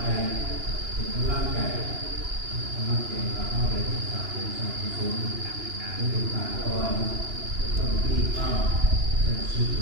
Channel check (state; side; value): late; left; 2.9 ms